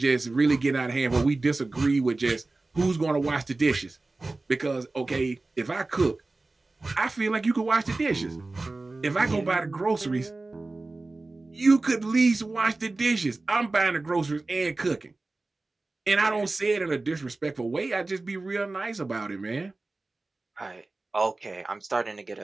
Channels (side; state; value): left; quieter; 3.3 dB